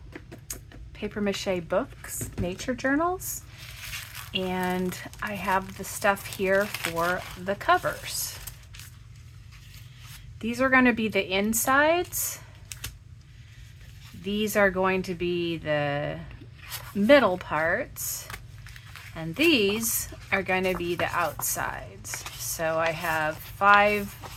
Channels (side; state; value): both; identical; correlation 1.00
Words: paper mache books, nature journals, and I have the stuff here for the covers. These are going to be the insides. These are going to be the middle parts. And these are going to be the outsides. So I have 5